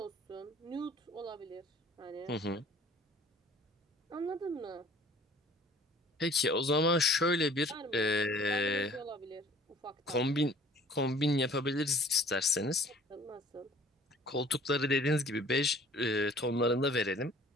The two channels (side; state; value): both; normal; correlation 0.52